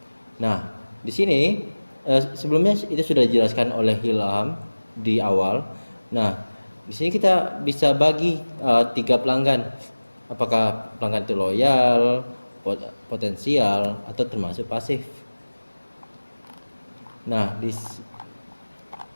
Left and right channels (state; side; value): inverted; both; correlation -1.00